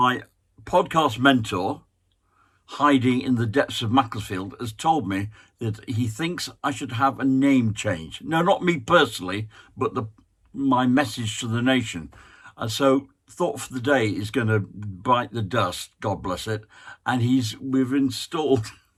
podcast mentor, hiding in the depths of Macclesfield, has told me that he thinks I should have a name change. No, not me personally, but my message to the nation. And so thought for the day is going to bite the dust, God bless it. And we've installed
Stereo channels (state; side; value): identical; both; correlation 1.00